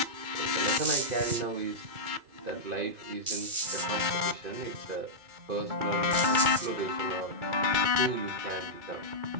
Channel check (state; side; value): late; left; 2.3 ms